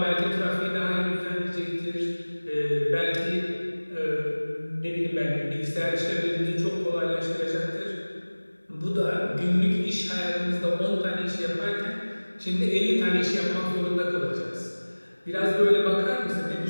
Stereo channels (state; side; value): inverted; both; correlation -1.00